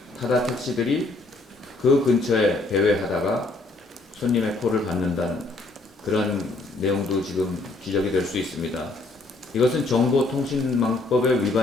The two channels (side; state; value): right; quieter; 3.1 dB